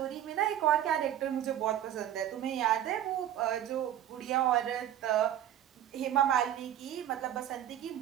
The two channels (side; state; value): left; quieter; 11.2 dB